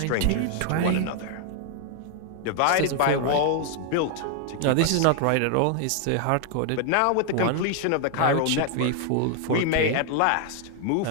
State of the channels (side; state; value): both; different; correlation 0.00